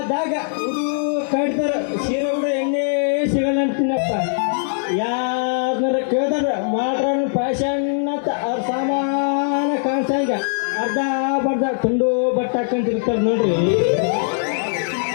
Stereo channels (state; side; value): silent; right; digital silence